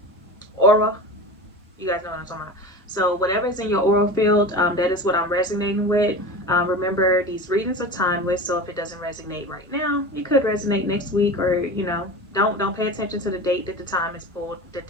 guys know what I'm talking about. So whatever's in your aura field, that is what I'm resonating with. Remember, these readings are timeless, so if it doesn't resonate right now, it could resonate next week, or you know, don't pay attention to the date that the time is pulled, that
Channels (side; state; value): both; normal; correlation 0.31